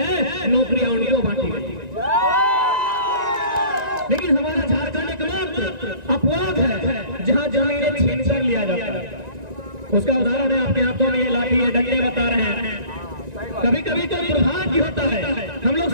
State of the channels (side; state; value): left; late; 1.9 ms